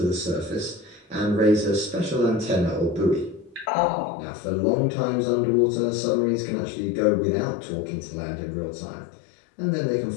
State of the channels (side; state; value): right; drops out; at 3.7 s